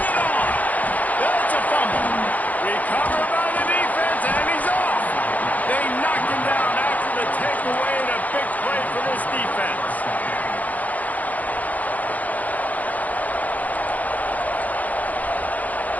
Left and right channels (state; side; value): late; right; 0.077 ms